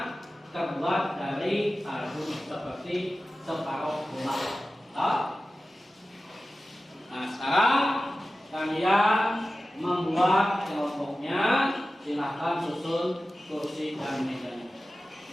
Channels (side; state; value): both; normal; correlation 0.95